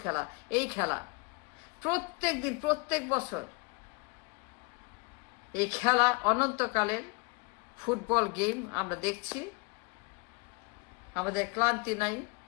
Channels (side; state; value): right; quieter; 30.0 dB